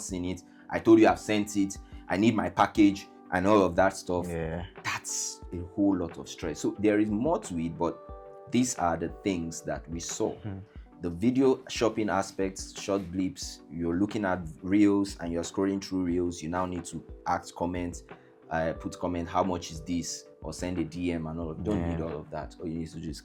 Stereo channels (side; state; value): both; identical; correlation 1.00